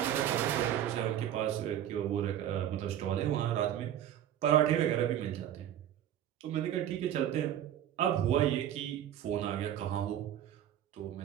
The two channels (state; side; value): quieter; left; 11.0 dB